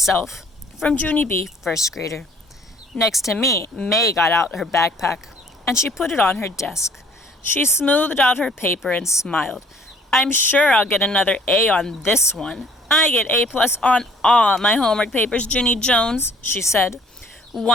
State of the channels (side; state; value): both; normal; correlation 0.57